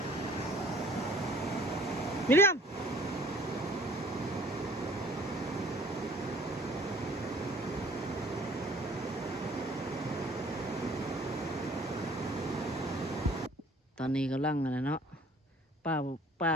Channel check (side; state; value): both; normal; correlation 0.54